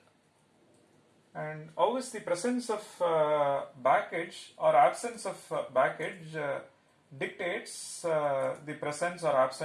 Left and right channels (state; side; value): identical; both; correlation 1.00